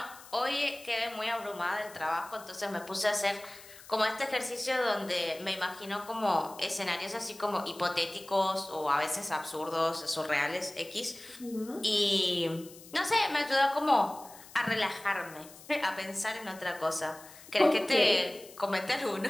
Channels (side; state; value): left; noise; hiss, 19 dB below the sound